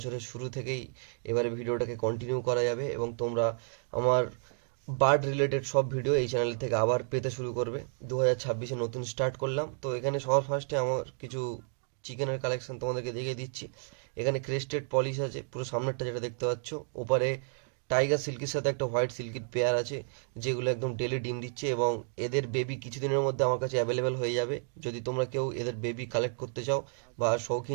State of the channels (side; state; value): left; silent; digital silence